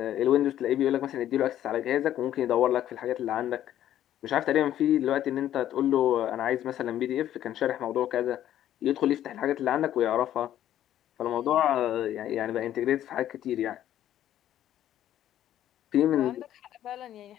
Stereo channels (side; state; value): right; quieter; 11.8 dB